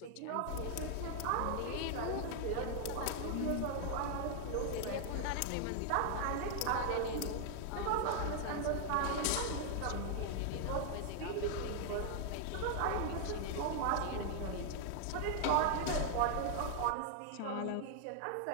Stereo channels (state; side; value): different; both; correlation 0.00